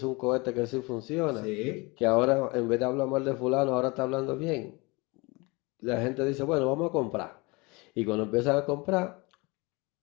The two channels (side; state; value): right; quieter; 26.2 dB